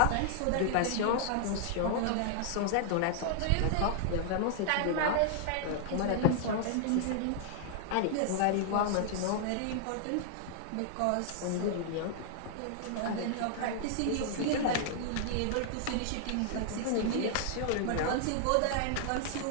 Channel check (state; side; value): different; both; correlation -0.01